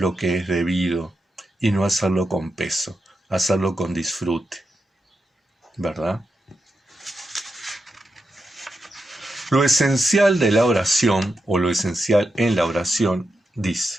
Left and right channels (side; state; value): both; normal; correlation 0.87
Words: que es debido y no hacerlo con peso, hacerlo con disfrute, ¿verdad? Lo esencial de la oración, o lo esencial en la oración,